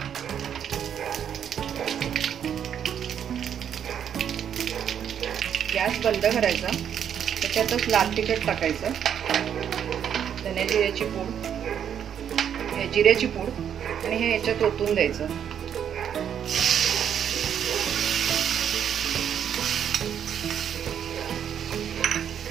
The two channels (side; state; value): left; quieter; 8.8 dB